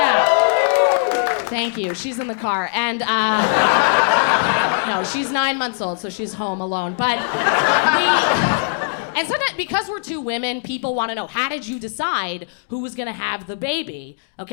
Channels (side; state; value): right; silent; digital silence